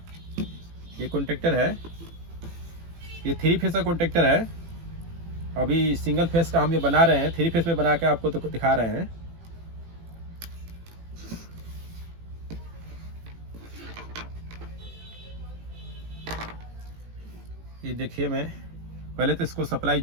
ये कॉन्टैक्टर है, ये 3 फेस का कॉन्टैक्टर है। अभी सिंगल फेस का हम ये बना रहे हैं, 3 फेस में बना के आपको तो दिखा रहे हैं। ये देखिए, मैं पहले तो इसको सप्लाई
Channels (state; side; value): late; left; 18 ms